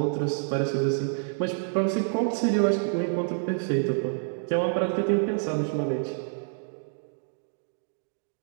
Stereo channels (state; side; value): silent; left; digital silence